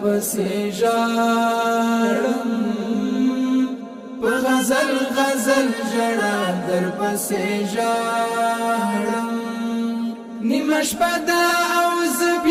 پسې ژاړم په غزل غزل ژړا در پسې ژاړم نیمه شپه ده او زه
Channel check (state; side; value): identical; both; correlation 1.00